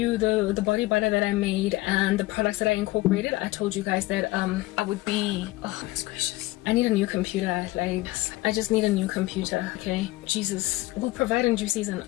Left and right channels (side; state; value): right; quieter; 19.3 dB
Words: the body butter that I made and the products that I incorporated. I told you guys that I would be, oh goodness gracious, I need a new computer. Like, I just need a new computer. Okay, Jesus, we'll provide in due season.